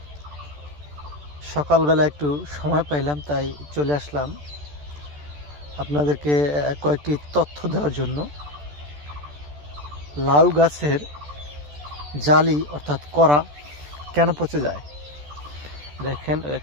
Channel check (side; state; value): left; late; 14 ms